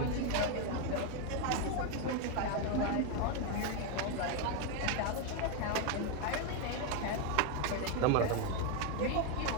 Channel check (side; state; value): both; different; correlation 0.01